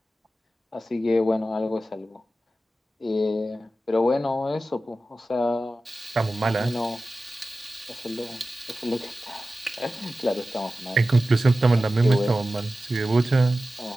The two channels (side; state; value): both; normal; correlation 0.95